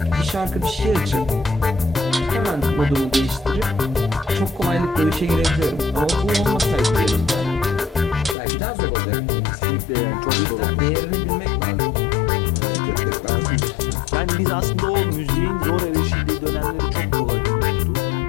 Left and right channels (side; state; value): right; drops out; at 8.3 s